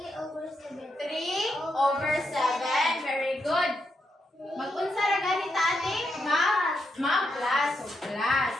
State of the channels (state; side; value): normal; both; correlation 0.82